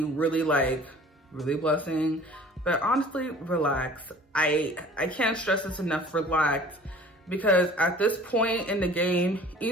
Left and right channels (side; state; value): both; normal; correlation 0.47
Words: really blessing, but honestly, relax. I can't stress this enough, relax, because at this point in the game,